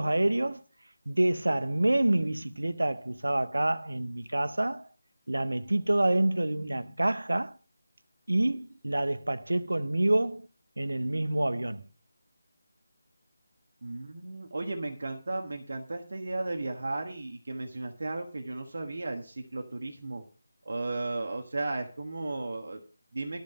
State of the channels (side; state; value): both; inverted; correlation -0.99